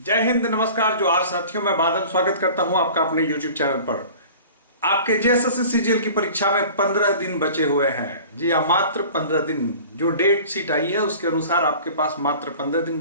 हिंद, नमस्कार जोहार साथियों। मैं बादल स्वागत करता हूं आपका अपने YouTube चैनल पर। आपके जेएसएससी सीजीएल की परीक्षा में 15 दिन बचे हुए हैं। जी हाँ, मात्र 15 दिन। जो डेट शीट आई है उसके अनुसार आपके पास मात्र 15 दिन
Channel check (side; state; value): both; inverted; correlation -0.43